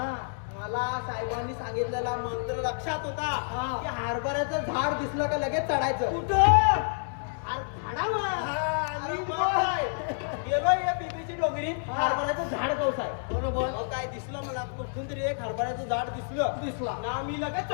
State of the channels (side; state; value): right; silent; digital silence